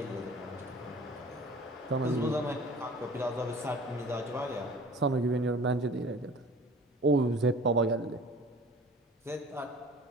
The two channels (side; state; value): both; normal; correlation 0.45